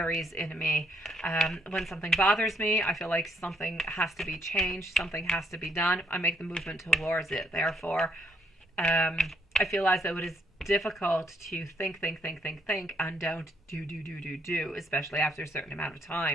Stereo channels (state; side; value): normal; both; correlation 0.72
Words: in me. When something bothers me, I feel like something has to be changed. Something has to be done. I make the movement towards it. Therefore, I feel as though it is difficult to think, and don't do, especially after a certain amount of